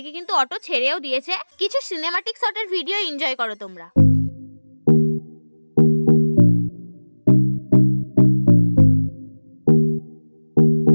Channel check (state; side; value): inverted; both; correlation -1.00